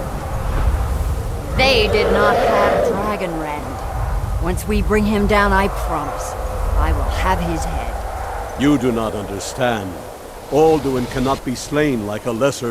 They did not have Dragonrend. Once we bring him down, I promise, I will have his head. You do not understand. Alduin cannot be slain like a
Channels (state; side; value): identical; both; correlation 1.00